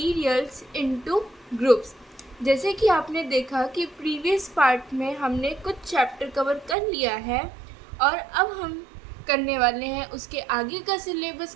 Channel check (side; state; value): left; drops out; at 6.8 s